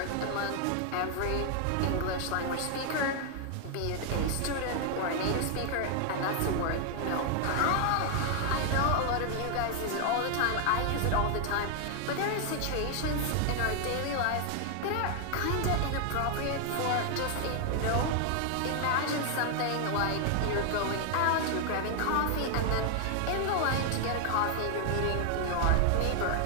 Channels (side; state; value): both; different; correlation 0.00